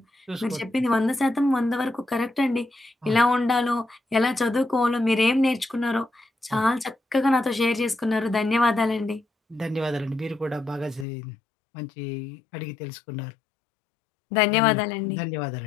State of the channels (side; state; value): right; drops out; at 11.1 s